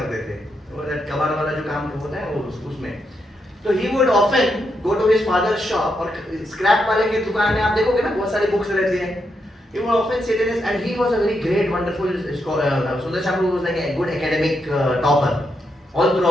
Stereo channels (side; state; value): both; normal; correlation 0.82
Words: थे, वो कबाड़ वाला जो काम होता है वो उसमें. तो he would often go to his father's shop, और स्क्रैप वाले की दुकान में आप देखोगे ना बहुत सारी बुक्स रहती हैं. He would often sit in his, and he was a very great, wonderful scholar. Sundar Shah was like a good academic topper, all